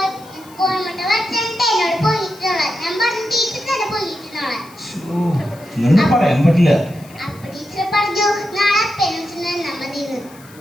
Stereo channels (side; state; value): left; noise; hiss, 24 dB below the sound